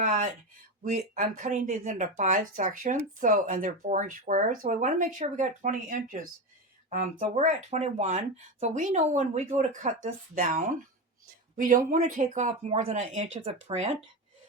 I'm cutting these into 5 sections, so, and they're 4-inch squares. So we want to make sure we got 20 inches. So we're at 21. So we know when we go to cut this down, we don't want to take off more than 1 inch of the print.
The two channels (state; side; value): normal; both; correlation 0.18